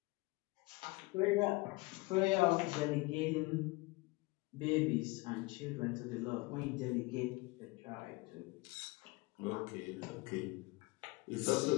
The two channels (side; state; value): right; quieter; 24.0 dB